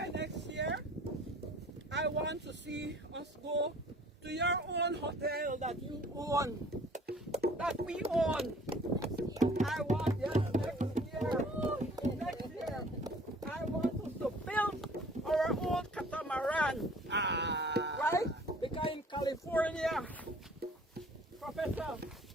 next year, I want to see us go to your own hotel that you own, that we own. I want, yes, next year, I want us to build our own catamaran, right? Because in California, Professor,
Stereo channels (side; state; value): both; normal; correlation 0.52